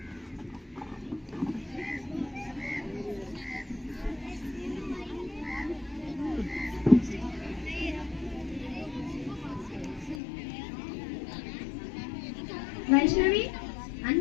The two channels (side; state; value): right; drops out; at 10.2 s